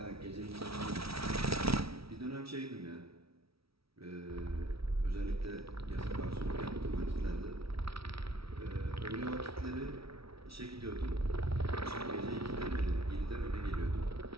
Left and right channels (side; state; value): left; late; 0.76 ms